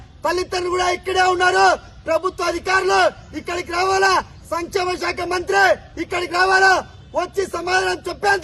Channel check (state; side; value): identical; both; correlation 1.00